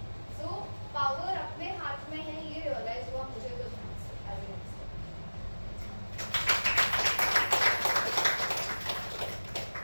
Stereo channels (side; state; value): both; inverted; correlation -1.00